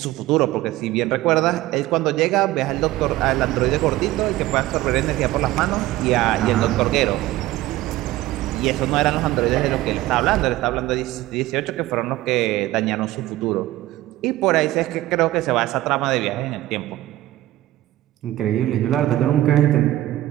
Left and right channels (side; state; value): left; quieter; 16.2 dB